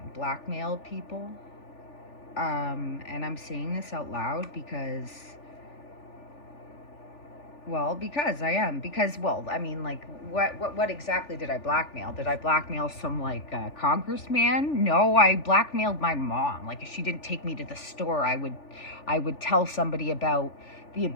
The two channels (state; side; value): late; right; 3.4 ms